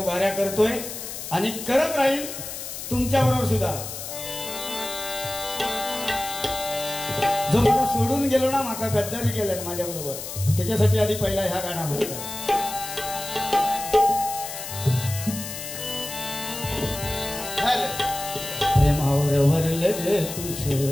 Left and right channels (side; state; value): left; noise; hiss, 8 dB below the sound